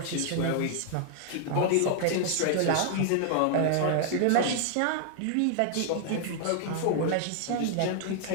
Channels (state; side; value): different; both; correlation 0.00